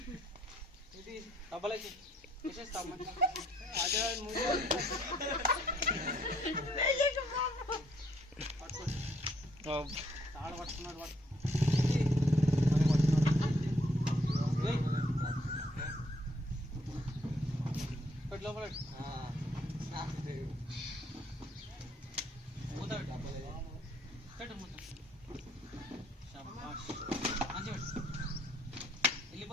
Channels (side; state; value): both; normal; correlation 0.68